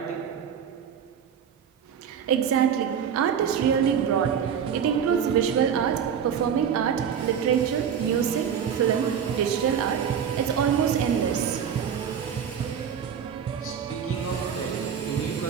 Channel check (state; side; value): quieter; left; 7.9 dB